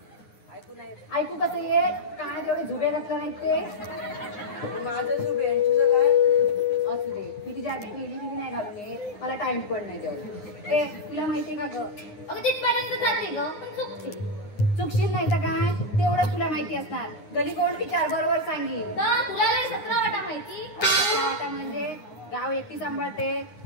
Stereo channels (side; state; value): right; late; 9.7 ms